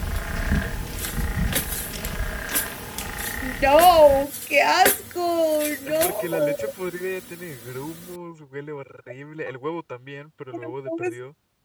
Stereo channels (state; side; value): identical; both; correlation 1.00